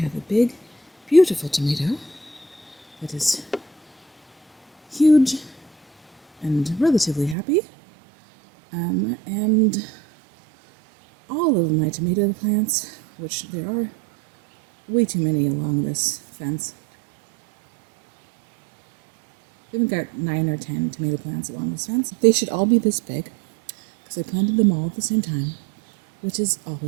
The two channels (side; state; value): left; drops out; at 7.4 s